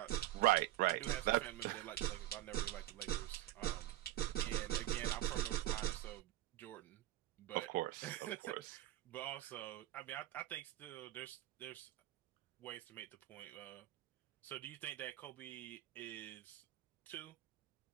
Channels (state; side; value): quieter; left; 14.8 dB